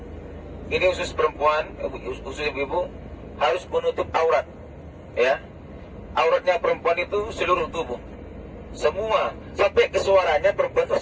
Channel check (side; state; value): both; identical; correlation 1.00